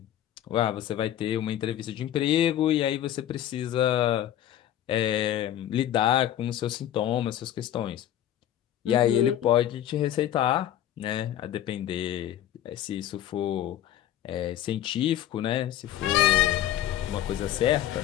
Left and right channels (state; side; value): quieter; right; 11.9 dB